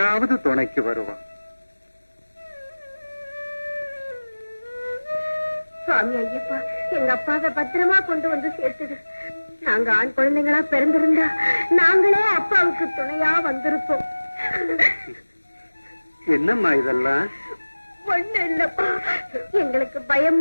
துணைக்கு வருவான். சுவாமி ஐயப்பா, எங்க அப்பாவை பத்திரமா கொண்டு வந்து சேர்த்துடு. நாங்க ஆண் குழந்தைங்களா பிறந்திருந்தா நாங்களே அப்பாவுக்கு துணையா வந்திருப்போம். என்னம்மா இதெல்லாம்? ஒண்ணு இல்லப்பா, எங்களுக்கு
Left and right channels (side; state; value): both; inverted; correlation -1.00